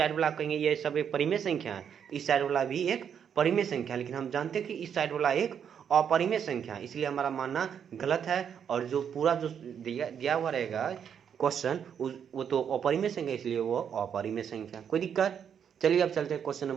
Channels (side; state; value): left; quieter; 8.0 dB